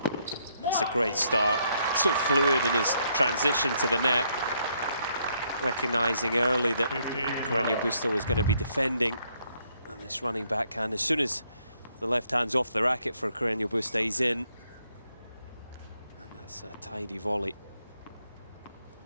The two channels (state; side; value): inverted; both; correlation -0.72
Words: That's a great start. So fluid in his transition to the net. Recognizing early that Carreno Busta was going to be defending. And this running backhand, as soon as the left hand's off the racket for Carreno Busta, he's in. And that's a tidy volley.